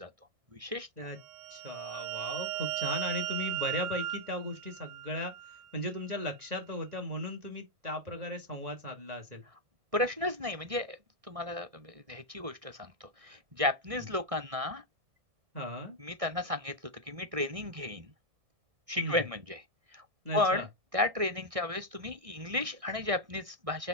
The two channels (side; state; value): left; late; 1.6 ms